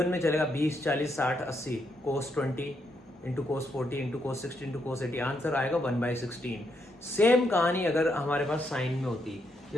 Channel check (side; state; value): both; normal; correlation 0.78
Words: में चलेगा 20, 40, 60, 80। cos 20 into cos 40 into cos 60 into cos 80, answer आएगा 1/16। सेम कहानी अगर हमारे पास साइन में होती,